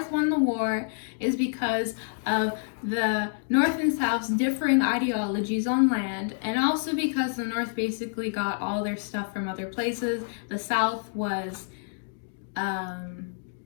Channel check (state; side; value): silent; right; digital silence